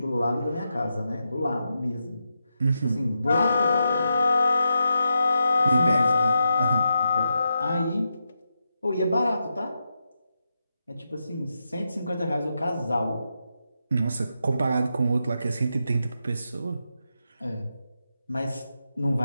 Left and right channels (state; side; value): inverted; both; correlation -0.86